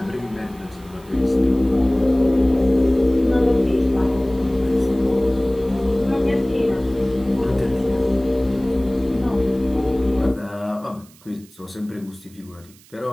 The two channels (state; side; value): noise; right; hiss, 26 dB below the sound